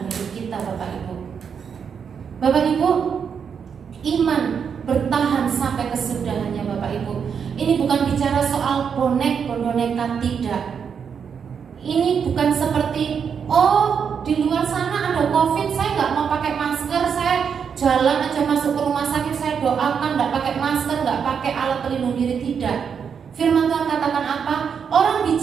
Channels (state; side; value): quieter; left; 6.9 dB